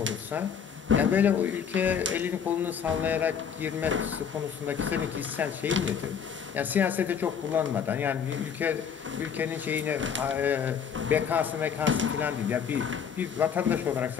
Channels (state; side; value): quieter; right; 7.4 dB